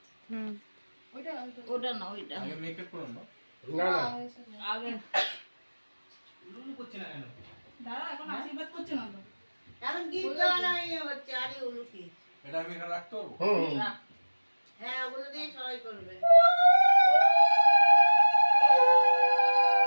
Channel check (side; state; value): both; inverted; correlation -1.00